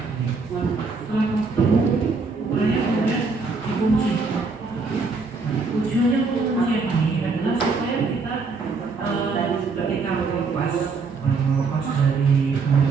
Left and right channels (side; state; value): left; quieter; 4.3 dB